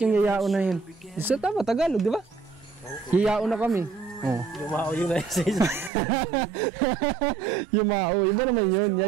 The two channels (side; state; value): left; drops out; at 5.9 s